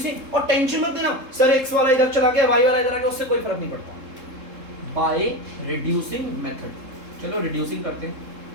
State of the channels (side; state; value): left; late; 3.7 ms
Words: और टेंशन मत लेना सर x वाला इधर चला गया y वाला इधर आ गया, उससे कोई फर्क नहीं पड़ता, बाय रिड्यूसिंग मेथड। चलो रिड्यूसिंग करते हैं।